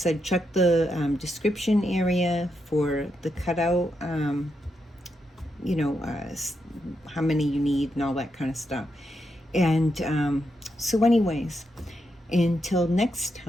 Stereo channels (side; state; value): both; normal; correlation 0.83